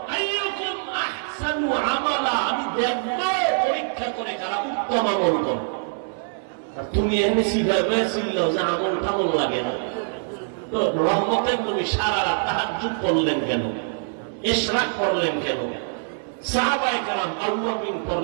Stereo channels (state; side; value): silent; left; 63 dB below the other